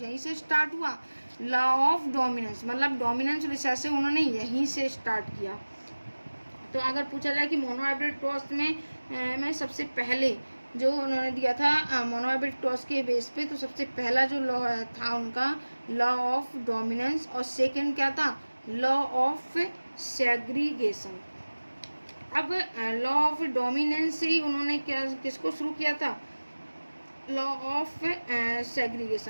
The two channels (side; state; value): both; inverted; correlation -1.00